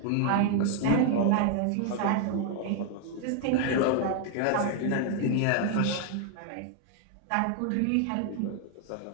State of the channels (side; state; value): both; different; correlation 0.00